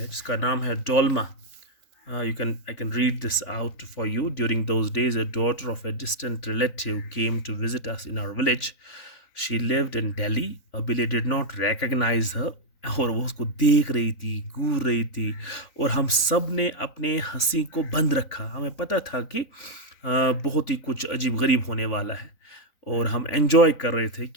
जिसका नाम है Dolma. I can read this out for you. During those days, a daughter of a distant relative came to visit us in our village. She lived in Delhi. Abile did not recognize her. और वो उसको देख रही थी, घूर रही थी, और हम सब ने अपने हंसी को बंद रखा. हमें पता था कि बहुत ही कुछ अजीब गरीब होने वाला है, और हम एंजॉय कर रहे थे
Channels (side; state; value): right; late; 3.5 ms